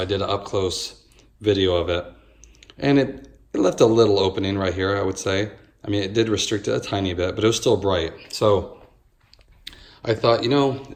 did an up close video of it, and it left a little opening right here, I would say. I mean, it did restrict it a tiny bit, but it was still bright. So I thought, you know,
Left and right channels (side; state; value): both; identical; correlation 1.00